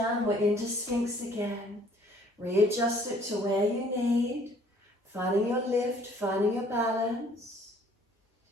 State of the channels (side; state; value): both; normal; correlation 0.58